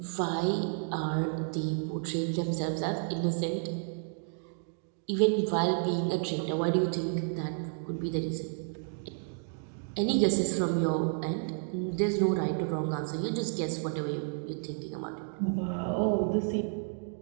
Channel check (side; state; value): left; silent; 57 dB below the other